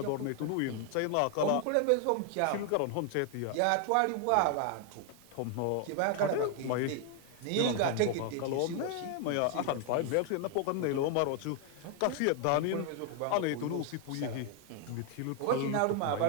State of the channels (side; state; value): both; different; correlation 0.00